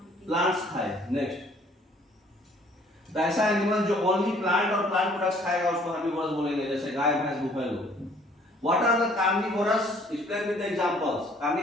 प्लांट्स खाए। नेक्स्ट, तो ऐसा एनिमल जो ओनली प्लांट और प्लांट प्रोडक्ट्स खाएगा उसको हर्बीवोरस बोलेंगे, जैसे गाय, भैंस, buffalo. What are the carnivorous? Explain with the examples.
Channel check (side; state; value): both; normal; correlation 0.58